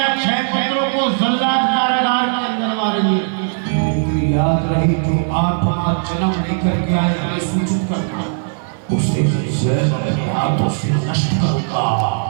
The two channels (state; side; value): silent; left; digital silence